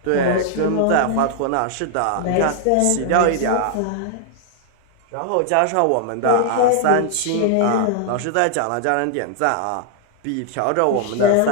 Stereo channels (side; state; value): both; different; correlation 0.00